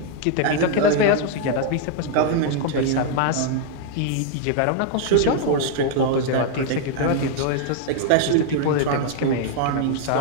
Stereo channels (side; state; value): both; different; correlation 0.00